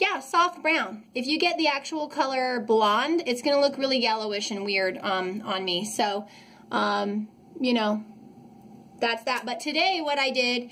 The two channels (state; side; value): identical; both; correlation 1.00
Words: soft brown. If you get the actual color blonde, it's gonna look really yellowish and weird on me. So, you know, that's that. But today what I did